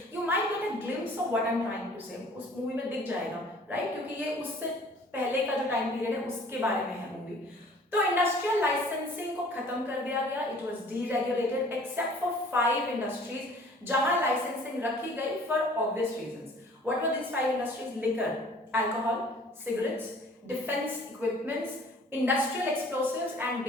You might get a glimpse of what I'm trying to say. उस मूवी में दिख जाएगा, राइट? क्योंकि ये उससे पहले का जो टाइम पीरियड है उसके बारे में है मूवी। तो इंडस्ट्रियल लाइसेंसिंग को खत्म कर दिया गया। It was deregulated except for 5 industries जहां लाइसेंसिंग रखी गई for obvious reasons. What were this 5 industries? Liquor, alcohol, cigarettes, defence equipments, industrial explosives and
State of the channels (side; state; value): both; normal; correlation 0.52